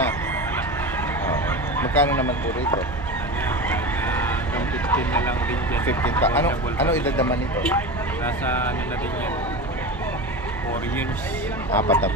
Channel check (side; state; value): both; normal; correlation 0.26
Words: Magkano naman po rito? Hanggang 15 na lang din dyan. 15 Ano edad naman ito? Nasa na din yan. 4 years. 4 na